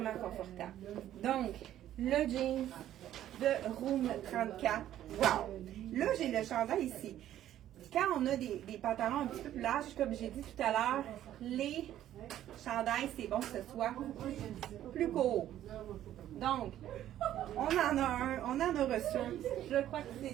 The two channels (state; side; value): quieter; left; 12.2 dB